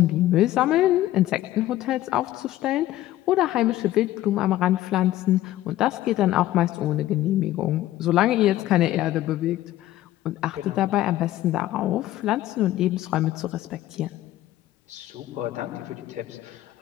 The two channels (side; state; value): right; quieter; 14.6 dB